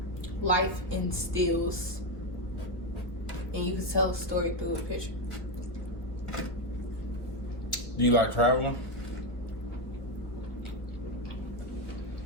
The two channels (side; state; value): right; late; 1.6 ms